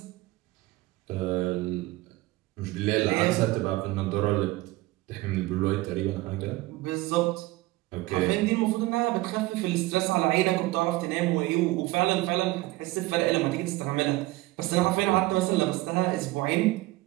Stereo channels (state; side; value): quieter; left; 19.5 dB